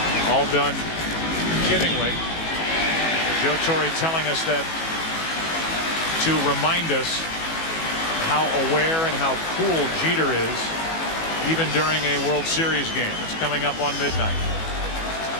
All done kiddingly. Joe Torre telling us that to remind us how aware and how cool Jeter is even during a World Series game. It's coming up on midnight.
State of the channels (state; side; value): late; right; 18 ms